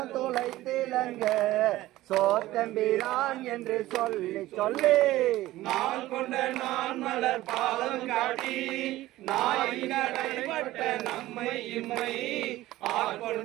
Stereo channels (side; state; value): left; quieter; 16.4 dB